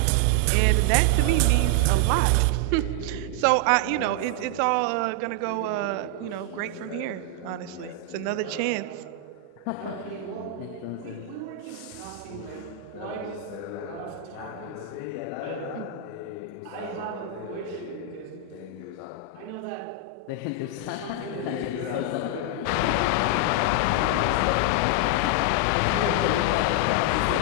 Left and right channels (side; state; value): both; different; correlation 0.00